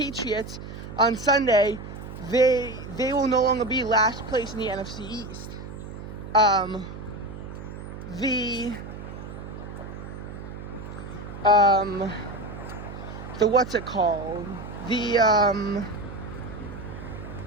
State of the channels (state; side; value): noise; right; hum, 11 dB below the sound